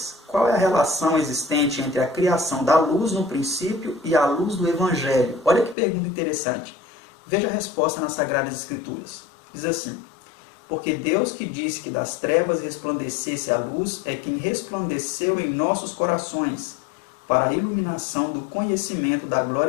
Qual é a relação existente entre a criação da luz no princípio e a luz do Evangelho? Olha que pergunta interessante. Veja a resposta nas Sagradas Escrituras. Diz assim, porque Deus que disse que das trevas resplandecesse a luz é quem resplandeceu em nossos corações para a iluminação do conhecimento da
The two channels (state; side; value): drops out; right; at 5.8 s